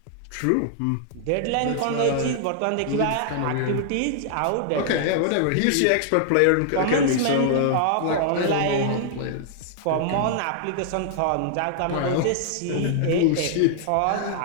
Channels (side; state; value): both; different; correlation -0.01